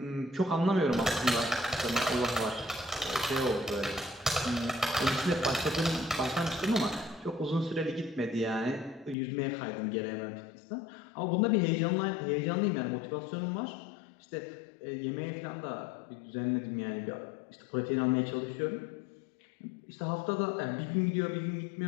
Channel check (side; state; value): right; drops out; at 9.2 s